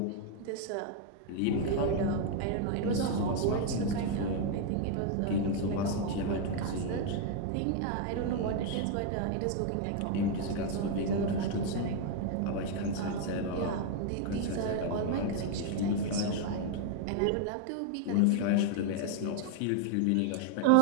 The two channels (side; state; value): both; different; correlation 0.00